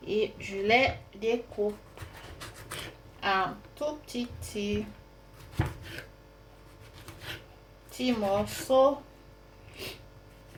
et je les découpe en tout petits morceaux.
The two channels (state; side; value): identical; both; correlation 1.00